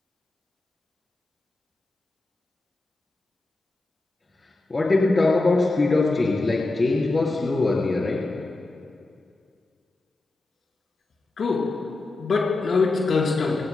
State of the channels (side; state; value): right; quieter; 3.1 dB